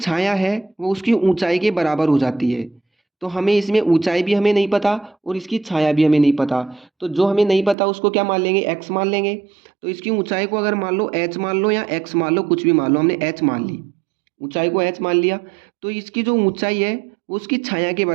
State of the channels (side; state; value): left; drops out; at 7.8 s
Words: है वो उसकी ऊंचाई के बराबर हो जाती है। तो हमें इसमें ऊंचाई भी हमें नहीं पता और इसकी छाया भी हमें नहीं पता, तो जो हमें नहीं पता उसको क्या मान लेंगे, एक्स मान लेंगे। तो इसकी ऊंचाई को अगर मान लो एच मान लो या एक्स मान लो, कुछ भी मान लो, हमने एच मान ली, ऊंचाई को एच मान लिया, तो इसकी जो ऊंचाई है वो उसकी छाया के